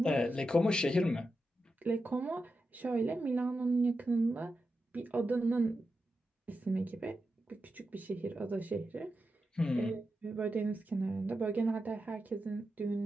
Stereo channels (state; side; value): normal; both; correlation 0.89